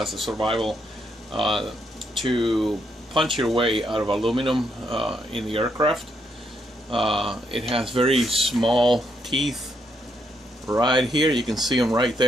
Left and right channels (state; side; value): normal; both; correlation 0.76